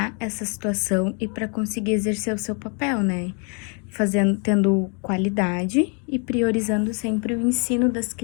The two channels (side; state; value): right; quieter; 37.6 dB